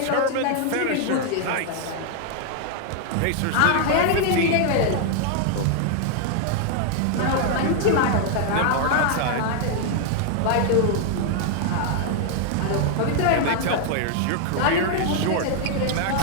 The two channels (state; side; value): different; both; correlation 0.00